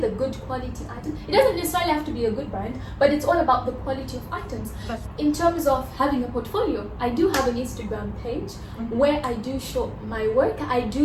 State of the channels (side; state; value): both; identical; correlation 1.00